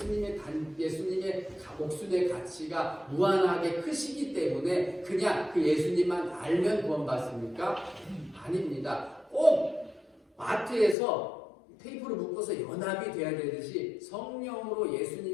목숨의 가치가 무한하게 크시기 때문에 그냥 그 예수님만 알면 구원받습니까? 아닙니다. 꼭 마트에서 테이프를 묶어서 연합이 돼야 되듯이 성령으로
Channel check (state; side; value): drops out; right; at 11.0 s